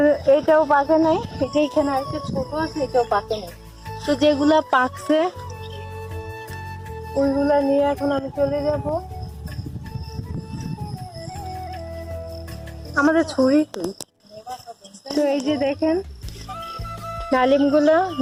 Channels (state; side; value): identical; both; correlation 1.00